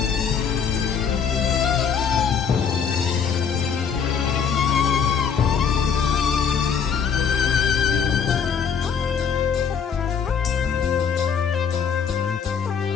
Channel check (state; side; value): quieter; right; 6.9 dB